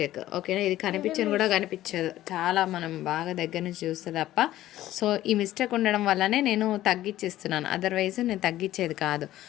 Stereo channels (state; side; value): quieter; right; 14.4 dB